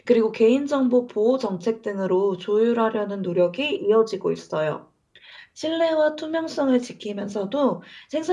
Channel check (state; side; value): identical; both; correlation 1.00